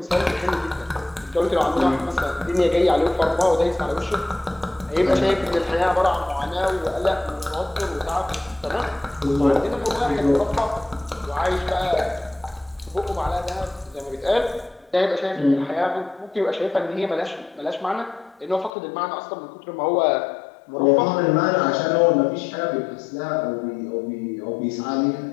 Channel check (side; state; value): right; drops out; at 18.7 s